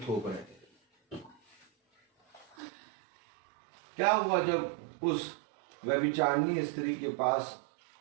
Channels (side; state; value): left; drops out; at 2.6 s